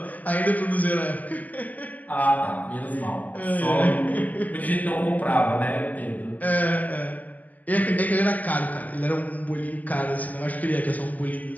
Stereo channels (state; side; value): late; right; 0.079 ms